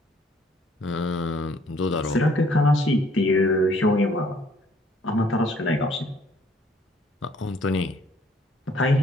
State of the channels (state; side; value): normal; both; correlation 0.62